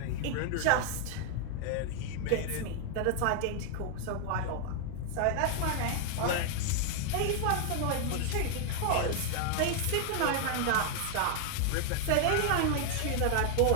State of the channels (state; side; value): different; both; correlation 0.00